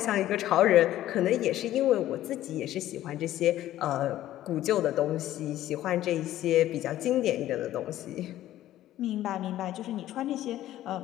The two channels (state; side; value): quieter; right; 13.7 dB